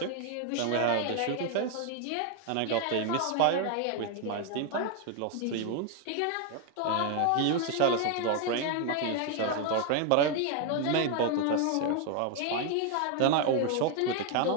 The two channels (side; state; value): both; different; correlation 0.01